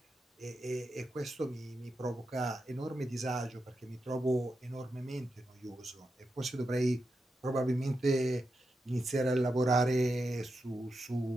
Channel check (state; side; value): normal; both; correlation 0.88